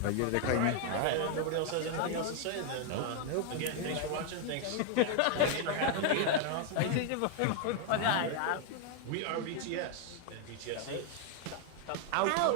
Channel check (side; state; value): both; different; correlation 0.00